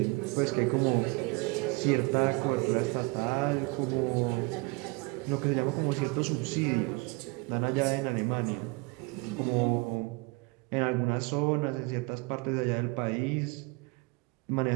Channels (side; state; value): left; quieter; 26.8 dB